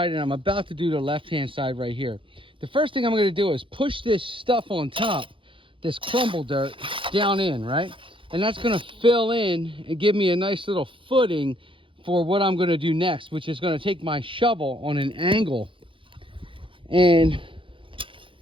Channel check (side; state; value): left; late; 0.25 ms